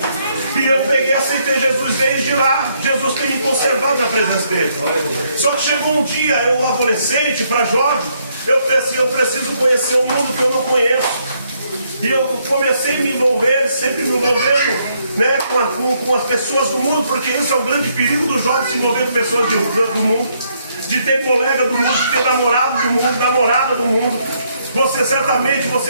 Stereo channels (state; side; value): inverted; both; correlation -0.72